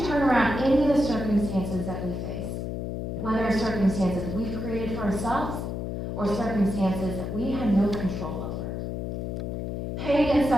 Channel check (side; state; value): left; noise; hum, 4 dB below the sound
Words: turn around any of the circumstances that we face. whether circumstances we've created for ourselves or circumstances that we have no control over. Pain and